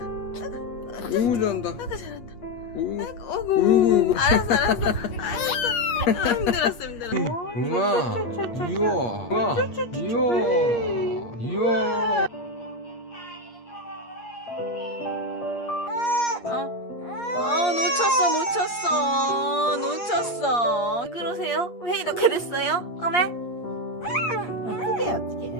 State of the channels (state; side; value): late; right; 8.5 ms